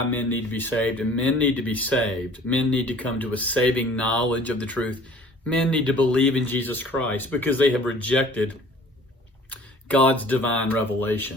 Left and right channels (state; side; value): normal; both; correlation 0.50